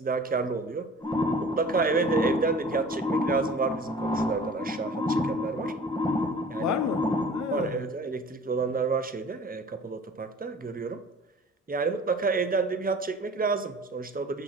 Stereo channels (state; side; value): normal; both; correlation 0.44